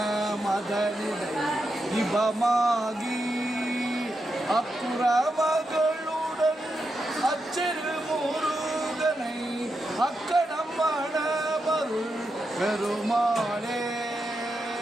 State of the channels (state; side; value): normal; both; correlation 0.86